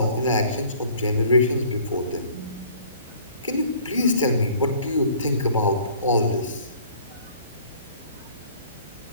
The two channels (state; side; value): inverted; both; correlation -0.53